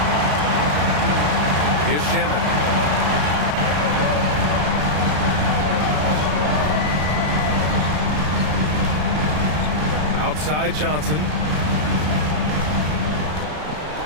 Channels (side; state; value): left; late; 33 ms